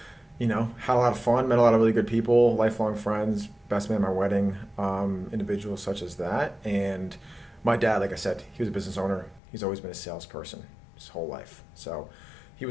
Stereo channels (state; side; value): drops out; right; at 9.4 s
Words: had a lot of fun, met a lot of really good people, lifelong friends, best man at my wedding, individuals such as that. And my dad, like I said, he was a business owner. He's always been a salesperson his whole life. So he